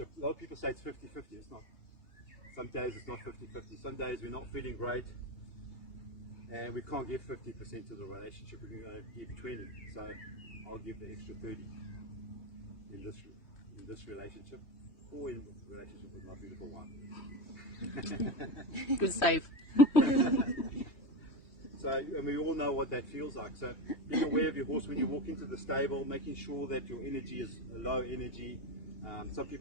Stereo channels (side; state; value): right; late; 2.9 ms